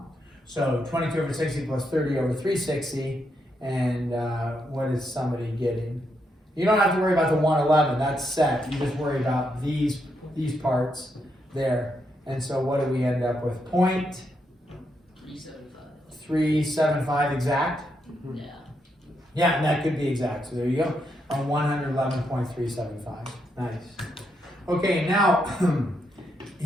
So 22 over 60 plus 30 over 360, and what is somebody getting? You don't have to worry about the 111, that's set. You just worry about these parts there. And so what do we end up with? 375 exact? Yeah. Yeah, and that could be exact. So there you go. On 111.375. Nice. Okay, now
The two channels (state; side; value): normal; both; correlation 0.80